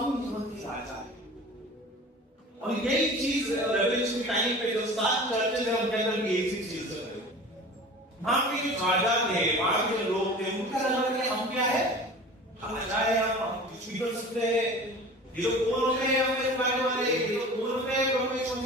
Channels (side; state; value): both; normal; correlation 0.39